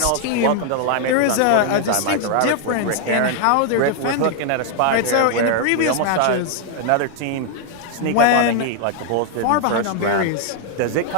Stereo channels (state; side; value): different; both; correlation 0.00